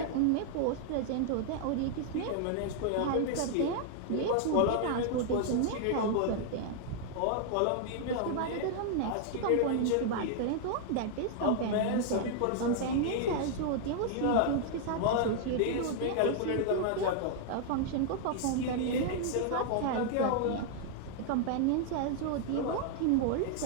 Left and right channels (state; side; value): different; both; correlation -0.01